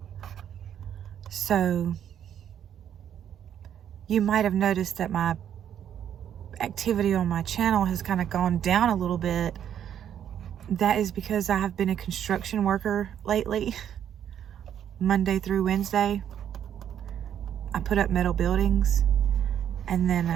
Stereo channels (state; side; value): quieter; left; 9.6 dB